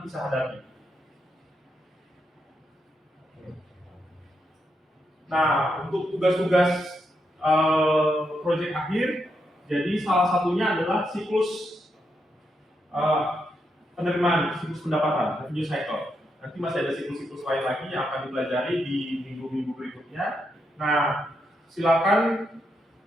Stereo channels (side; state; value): both; normal; correlation 0.82